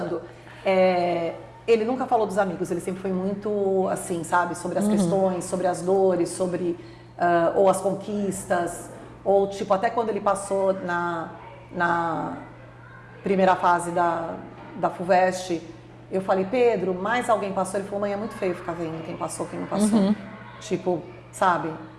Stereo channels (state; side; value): identical; both; correlation 1.00